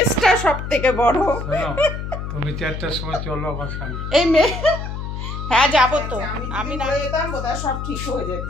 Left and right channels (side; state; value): left; noise; hum, 6 dB below the sound